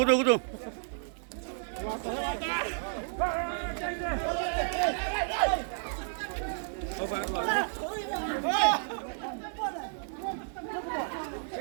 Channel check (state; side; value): silent; left; 57 dB below the other